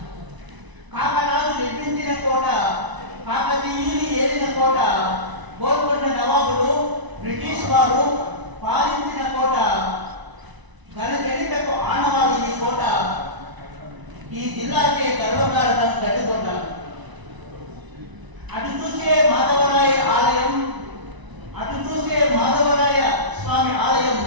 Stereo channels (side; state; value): left; late; 1.0 ms